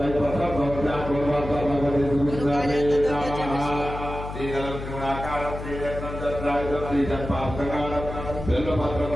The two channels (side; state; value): left; noise; hum, 8 dB below the sound